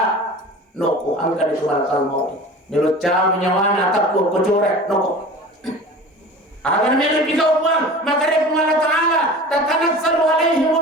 noko angkan itu malakal mau melucap nyawana takut kocorek noko. Agar mereka pikau uang, maka dia Allah Ta'ala tatanazzalu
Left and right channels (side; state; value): both; normal; correlation 0.38